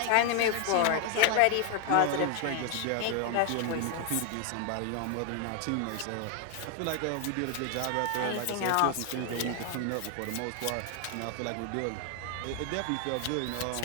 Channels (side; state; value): both; different; correlation 0.00